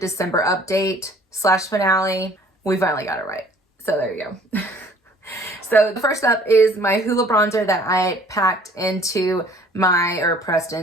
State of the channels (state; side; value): normal; both; correlation 0.54